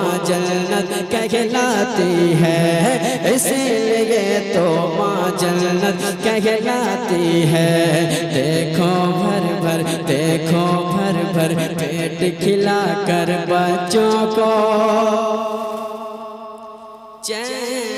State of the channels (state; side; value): identical; both; correlation 1.00